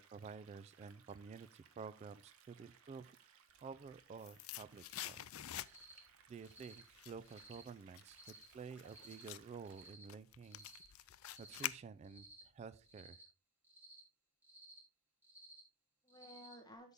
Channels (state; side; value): normal; both; correlation 0.15